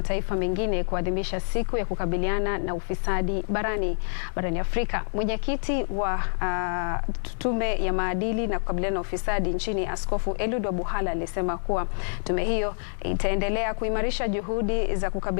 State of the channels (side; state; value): right; silent; 60 dB below the other